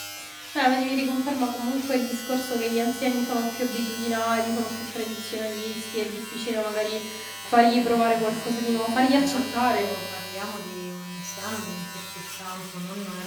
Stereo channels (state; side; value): identical; both; correlation 1.00